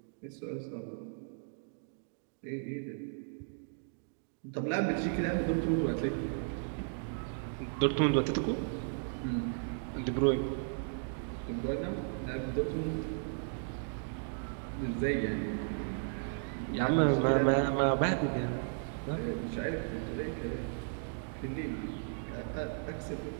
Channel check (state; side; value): silent; left; digital silence